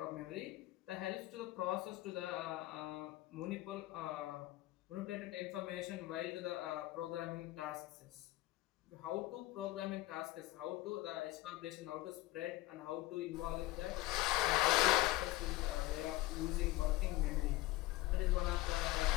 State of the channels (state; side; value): quieter; right; 17.7 dB